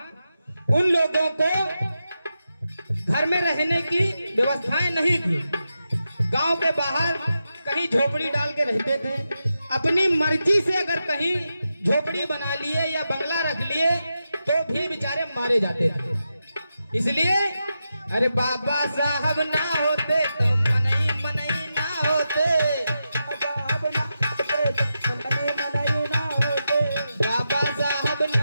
उन लोगों को घर में रहने की व्यवस्थाएं नहीं थी, गांव के बाहर कहीं झोपड़ी डाल के रहते थे। अपनी मर्जी से अगर कहीं झोपड़ी बना लिए या बंगला रख लिए तो भी बेचारे मारे जाते थे। इसलिए अरे बाबा साहब ना होते तो मनई मनई ना होते, साहब ना होते तो मनई मनई ना होते। बाबा साहब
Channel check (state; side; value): inverted; both; correlation -0.89